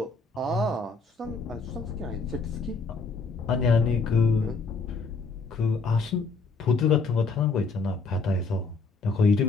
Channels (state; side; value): quieter; right; 4.1 dB